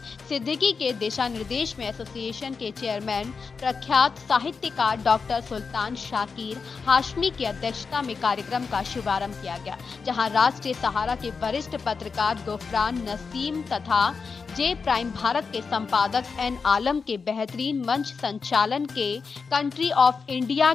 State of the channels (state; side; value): quieter; right; 5.1 dB